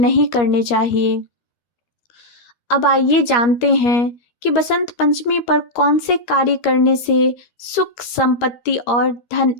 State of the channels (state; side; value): late; right; 13 ms